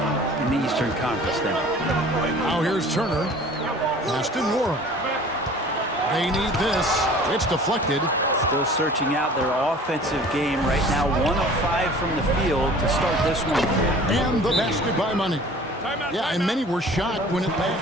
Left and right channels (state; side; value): normal; both; correlation 0.46